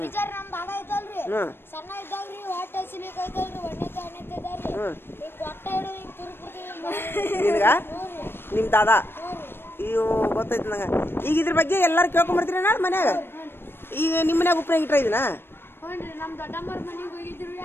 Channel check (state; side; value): late; right; 0.11 ms